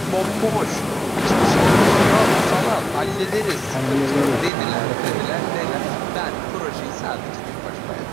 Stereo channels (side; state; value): left; drops out; at 4.5 s